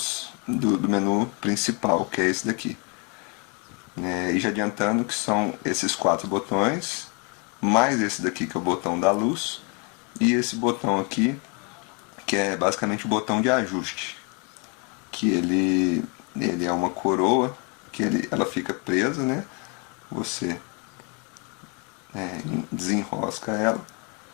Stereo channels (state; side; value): quieter; right; 33.9 dB